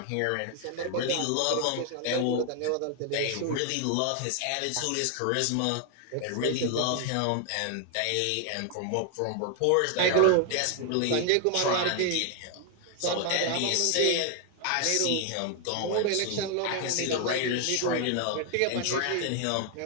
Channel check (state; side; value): different; both; correlation 0.00